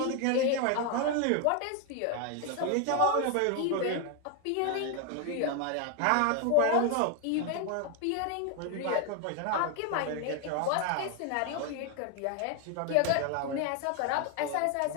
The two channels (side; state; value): both; different; correlation 0.01